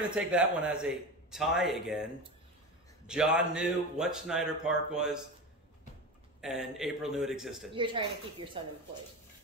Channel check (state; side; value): normal; both; correlation 0.24